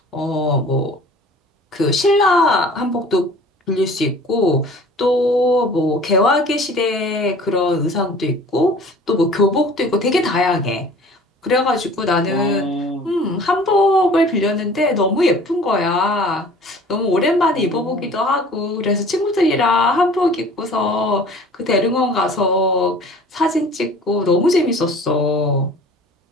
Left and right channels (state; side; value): normal; both; correlation 0.47